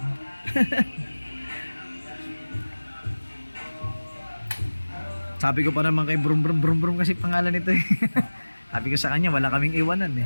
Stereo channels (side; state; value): both; inverted; correlation -1.00